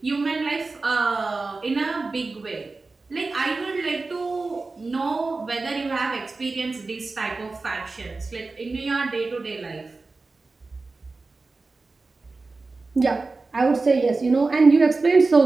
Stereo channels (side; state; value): left; quieter; 3.7 dB